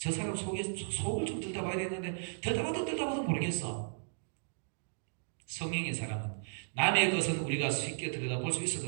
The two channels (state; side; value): silent; left; digital silence